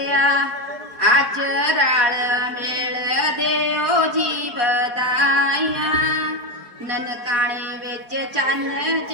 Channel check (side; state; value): left; late; 4.7 ms